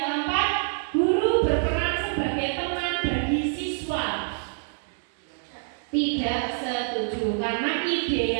keempat, guru berperan sebagai teman bagi siswa. Tidak setuju, karena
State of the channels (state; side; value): silent; left; digital silence